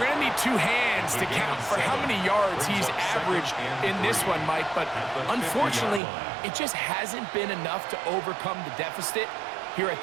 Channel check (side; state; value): left; drops out; at 6.0 s